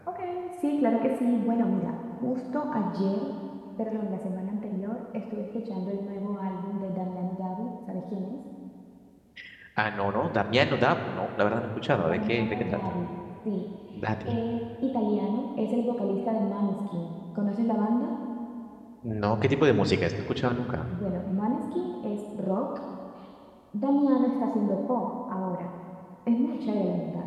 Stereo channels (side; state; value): both; identical; correlation 1.00